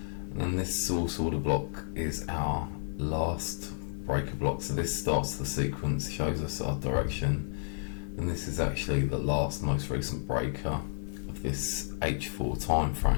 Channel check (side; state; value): right; silent; digital silence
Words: and then this source order block is our last breaker block. So this starts the sequence, shows us our direction, and this is actually the last most recent breaker of this H4 time